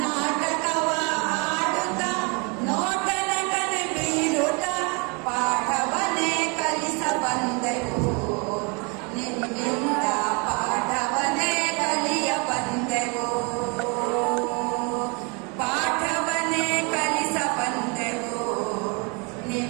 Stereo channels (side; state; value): left; quieter; 32.2 dB